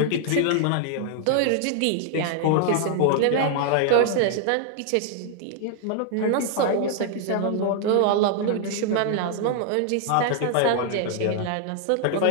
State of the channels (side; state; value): both; different; correlation 0.00